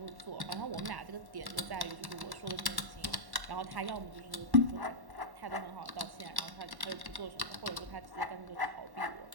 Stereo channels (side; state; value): left; late; 1.1 ms